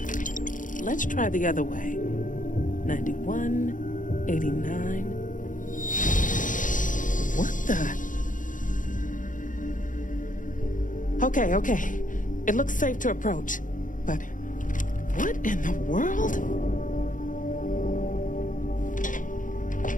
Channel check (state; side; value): late; right; 0.38 ms